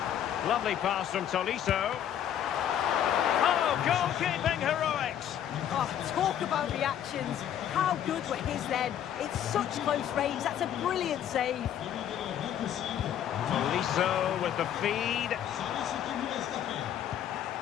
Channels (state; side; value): quieter; right; 10.2 dB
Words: Lovely pass from Tolisso. Oh, goalkeeping heroics! Oh, talk about reactions. How good were his then? It's such close range, that's a brilliant save. Tolisso with the feed.